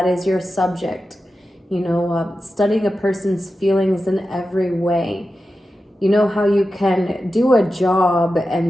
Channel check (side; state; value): both; normal; correlation 0.92